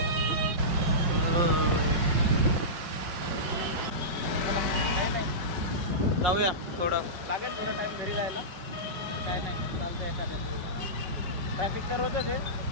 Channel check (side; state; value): left; late; 5.6 ms